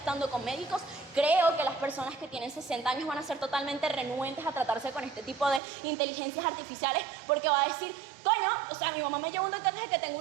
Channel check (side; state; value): left; drops out; at 5.6 s